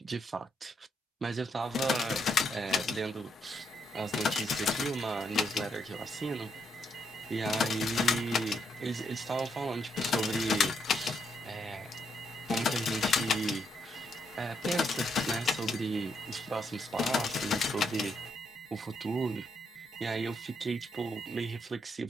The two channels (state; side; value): normal; both; correlation 0.76